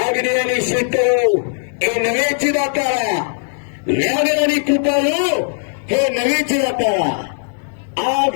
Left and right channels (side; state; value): right; silent; 67 dB below the other